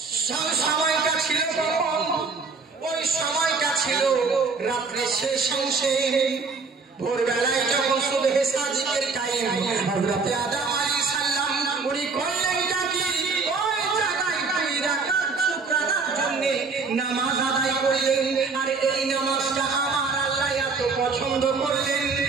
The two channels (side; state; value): left; quieter; 4.5 dB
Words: সময়টা ছিল কখন? ওই সময়টা ছিল রাত্রে শেষ অংশে, ভোরবেলায় যখন সুবহে সাদিকের টাইম, হযরত আদম আলাইহিস সালাম উনি করলেন কি ওই জায়গায় 2 রাকাত শুকরানার জন্য নামাজ আদায় করলেন। আর এই নামাজটা আমার আল্লাহ এত পছন্দ করলেন।